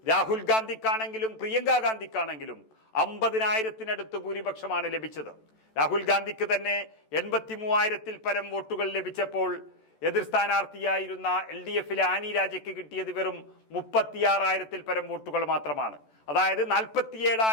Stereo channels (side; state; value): right; late; 14 ms